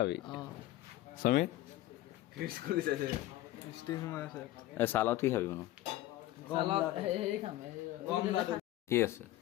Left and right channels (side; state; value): right; quieter; 15.6 dB